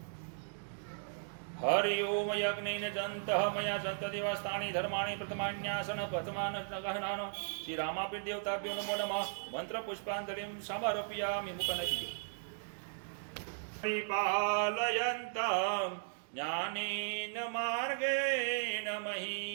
હરિ ઓમ યજ્ઞેન જંતઃ મયા જંતદેવસ્તાની ધર્માણી પ્રથમાન્યાસન પ્રથમાન ગહનાન શ્રી રામાપીર દેવતાભ્યો નમો નમઃ મંત્ર પુષ્પાંજલિં સમર્પયામિ મુખનકી પરિપાલયન્तं જ્ઞાનેન માર્ગેણ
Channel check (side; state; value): left; silent; digital silence